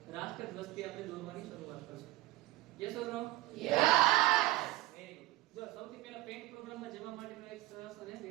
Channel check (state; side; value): quieter; left; 17.9 dB